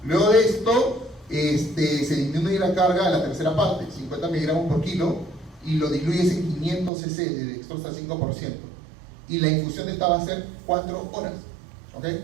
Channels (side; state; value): left; drops out; at 6.9 s